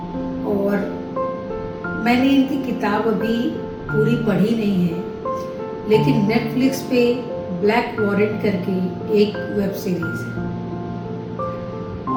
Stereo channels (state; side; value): identical; both; correlation 1.00